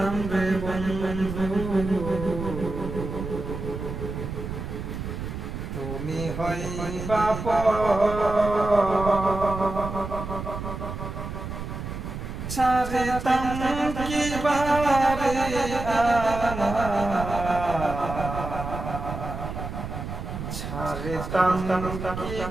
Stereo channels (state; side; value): noise; right; rumble, 7 dB below the sound